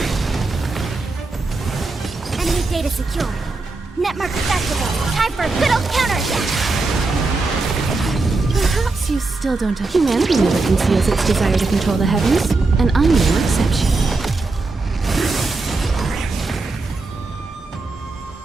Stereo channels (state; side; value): quieter; left; 3.5 dB